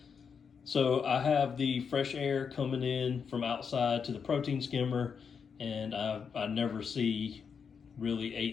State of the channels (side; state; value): right; quieter; 6.3 dB